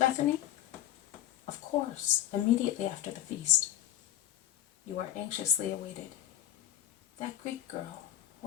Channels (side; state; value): right; quieter; 12.4 dB